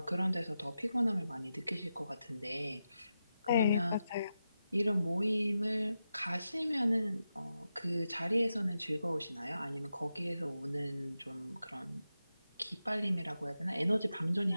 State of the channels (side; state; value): both; inverted; correlation -0.89